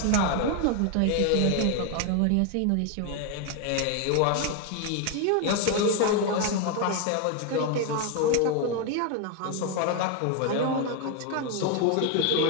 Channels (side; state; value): both; different; correlation 0.01